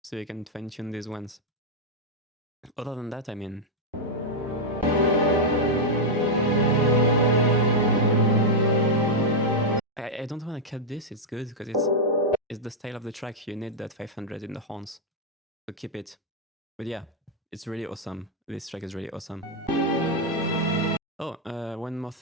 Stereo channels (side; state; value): both; normal; correlation -0.03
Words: so you can fine-tune these ones. Other than that, I mean, I don't want to cut this. It's good because it's the style of the track. You need that 500 in the horns, so keep it. But yeah, it's really awesome. This track is really awesome. Oh, one more